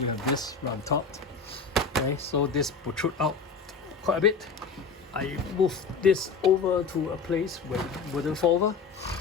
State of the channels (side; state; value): right; quieter; 5.1 dB